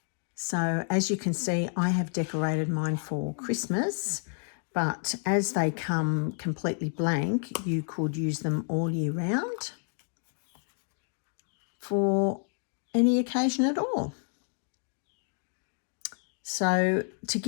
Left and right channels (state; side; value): silent; right; 58 dB below the other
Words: So as you can see, I have decorated mine for Christmas, but as they come completely blank, you could use them all year round for any occasion at all. So to